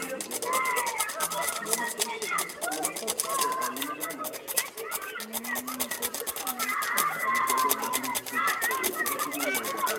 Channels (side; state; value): both; identical; correlation 1.00